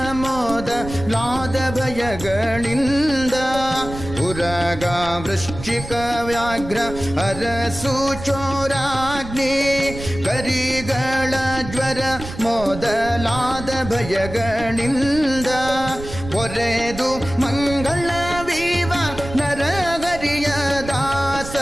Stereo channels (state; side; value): noise; right; rumble, 11 dB below the sound